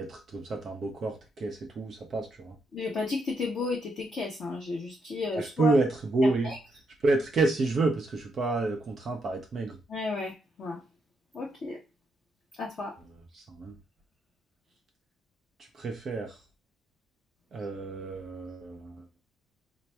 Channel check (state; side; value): normal; both; correlation 0.78